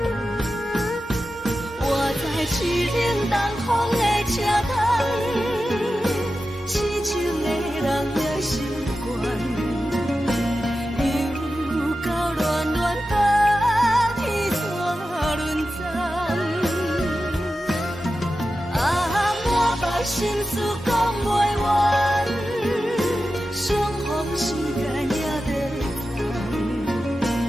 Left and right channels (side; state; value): both; normal; correlation 0.92